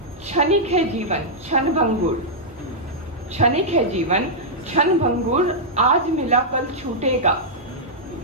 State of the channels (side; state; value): both; normal; correlation -0.08